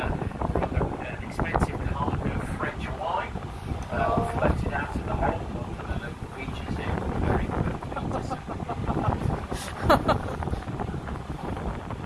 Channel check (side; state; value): both; identical; correlation 1.00